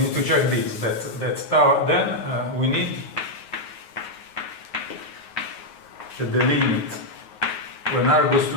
need to check this, that tau, then we need that the limit when r goes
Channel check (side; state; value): right; late; 9.4 ms